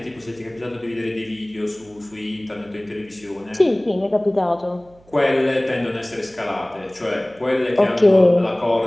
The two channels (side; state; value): right; noise; hum, 28 dB below the sound